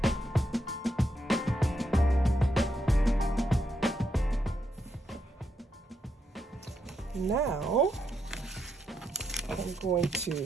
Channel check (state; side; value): normal; both; correlation 0.80